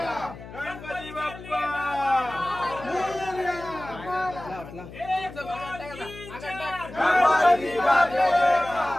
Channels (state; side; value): noise; left; hum, 15 dB below the sound